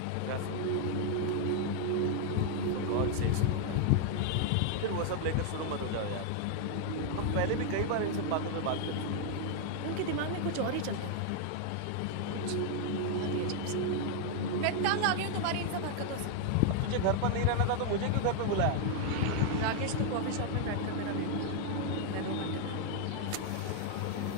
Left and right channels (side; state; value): both; different; correlation 0.00